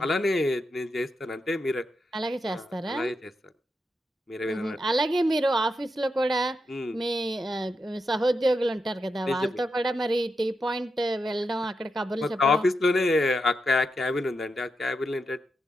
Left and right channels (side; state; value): both; normal; correlation 0.86